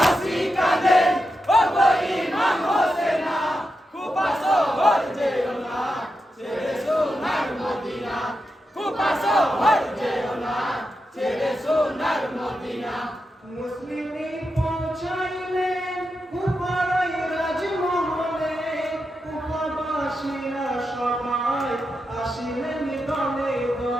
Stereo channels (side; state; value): both; normal; correlation 0.87